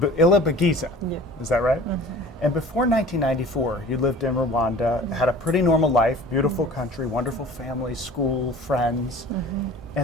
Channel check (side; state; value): both; normal; correlation 0.43